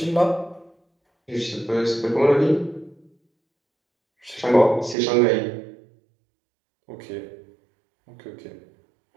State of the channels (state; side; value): drops out; left; at 5.0 s